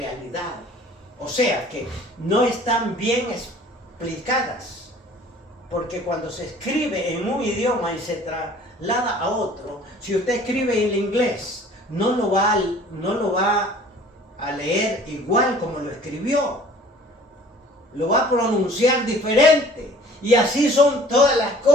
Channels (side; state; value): both; normal; correlation 0.50